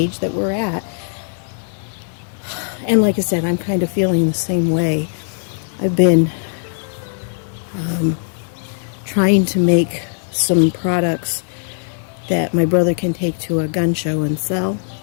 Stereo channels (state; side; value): silent; right; 66 dB below the other